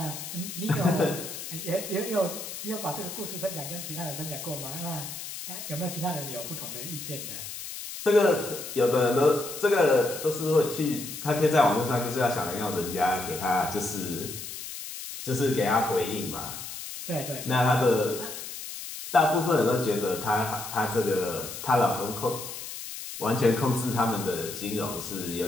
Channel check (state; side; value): noise; left; hiss, 9 dB below the sound